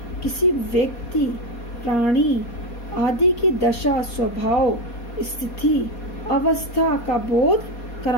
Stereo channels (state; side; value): late; right; 4.2 ms